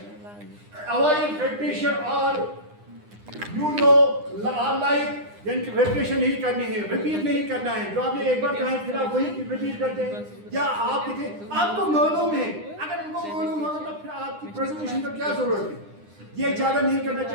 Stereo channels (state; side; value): late; left; 9.8 ms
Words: अवॉइड रिपीटिशन और यू नो लाइक, यानी कि रिपीटिशन नहीं करनी है, रिपीट नहीं करना है, जो आपने एक बार कहा है फिर आप वही रिपीट करते हैं। या आप आपको मालूम है, अगर उनको मालूम होगा तो फिर आपकी प्रेजेंटेशन की क्या जरूरत है, ये ज्यादा नहीं करना